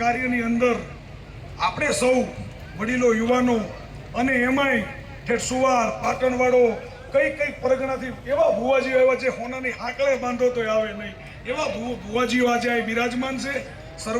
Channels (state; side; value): identical; both; correlation 1.00